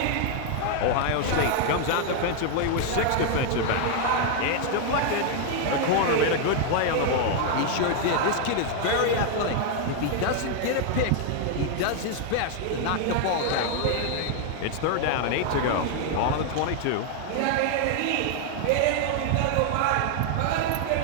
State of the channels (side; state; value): both; different; correlation 0.00